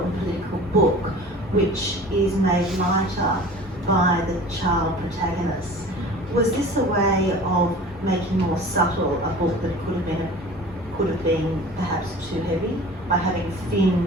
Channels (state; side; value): normal; both; correlation 0.41